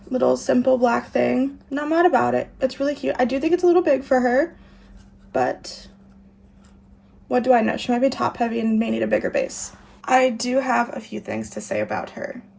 little simple black thing. Not mad about it. It's really cute. I do think it's a little big for her, but what do I know? She might be top heavy and may need a bigger base. I do have a few things to say about her.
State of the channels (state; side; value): identical; both; correlation 1.00